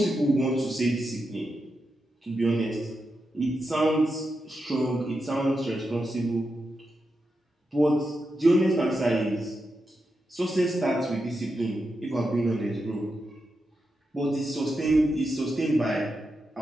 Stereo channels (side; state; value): both; normal; correlation 0.87